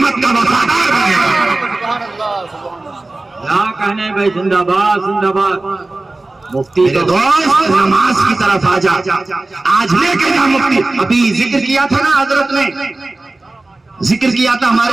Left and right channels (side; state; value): left; quieter; 3.0 dB